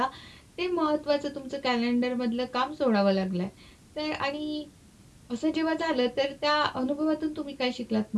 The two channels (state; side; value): identical; both; correlation 1.00